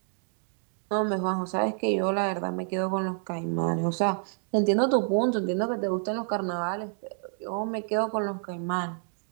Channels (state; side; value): silent; left; 59 dB below the other